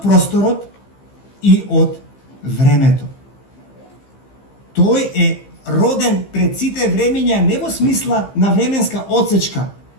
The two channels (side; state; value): right; late; 15 ms